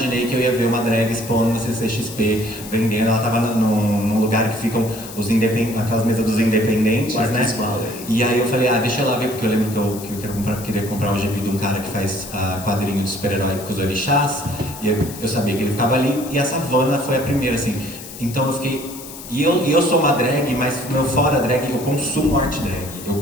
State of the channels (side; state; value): left; noise; hiss, 14 dB below the sound